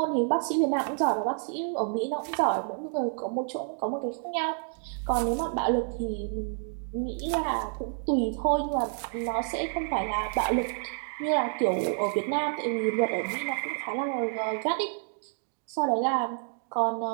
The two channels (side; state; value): left; silent; 59 dB below the other